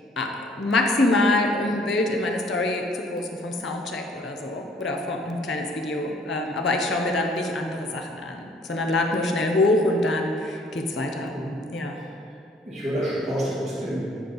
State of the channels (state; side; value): normal; both; correlation 0.59